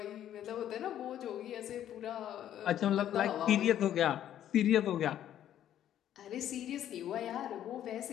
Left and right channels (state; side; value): quieter; right; 11.1 dB